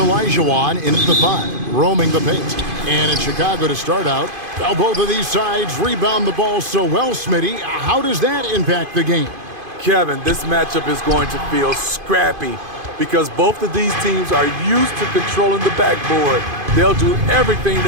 in at the 5, roaming the paint. And in Chicago to start out, well, both of these sides rebound the ball so well, Smitty. How does that impact the game? Kevin, this matchup is going to feel scrappy because both of these teams are used to controlling the backboard. They'll do everything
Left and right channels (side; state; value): left; late; 2.5 ms